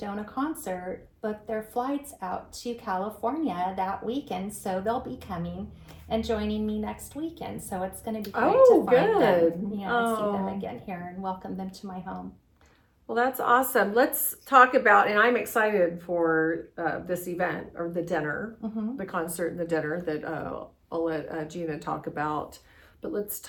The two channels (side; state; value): both; identical; correlation 1.00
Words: concert booked their flights out to California that weekend, so they'll be coming and joining me next weekend. So it's going to be great to find them, see them again here and welcome them to my home. Well, that's awesome. Let's talk about, and I'm excited for this event, or the dinner, the concert and the dinner that I'll let Gina talk about. But let's